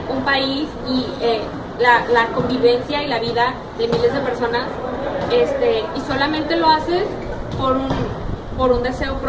un país y la convivencia y la vida de miles de personas, y solamente lo haces por un deseo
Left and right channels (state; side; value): identical; both; correlation 1.00